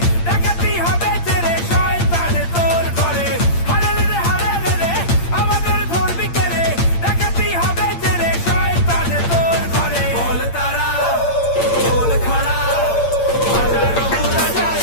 ডাকাতি হবে তেরে শয়তান তোর ঘরে। হারে রে হারে রে রে আমাদের ধরবি কে রে, ডাকাতি হবে তেরে শয়তান তোর ঘরে। বল তারা বল খড়া বাজারো বুড়া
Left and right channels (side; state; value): right; late; 8.7 ms